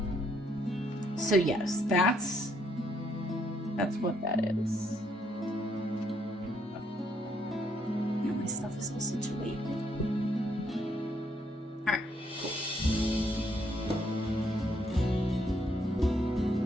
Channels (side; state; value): both; normal; correlation 0.72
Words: So yes, that's what that is. Now my stuff is all situated. Alright, cool.